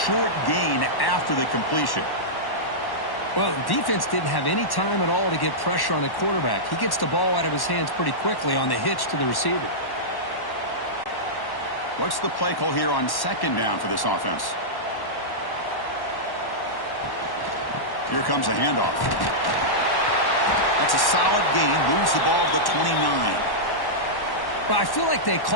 gain after the completion. Well, the defense didn't have any time at all to get pressure on the quarterback. He gets the ball out of his hands pretty quickly on the hitch to the receiver. What's the play call here on 2nd down for this offense? Here comes a handoff. That's a solid gain. Moves the ball to the 29. Well, I feel like they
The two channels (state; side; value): late; right; 1.1 ms